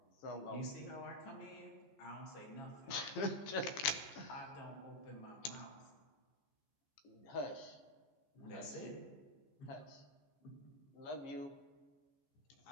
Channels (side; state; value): right; late; 15 ms